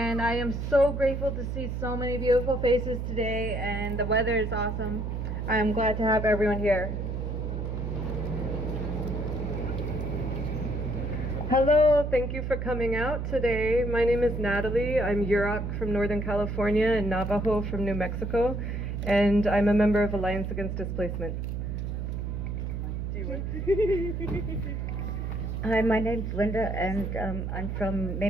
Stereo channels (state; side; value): noise; right; hum, 3 dB below the sound